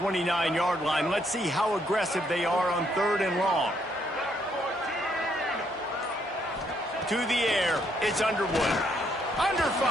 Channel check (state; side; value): normal; both; correlation 0.72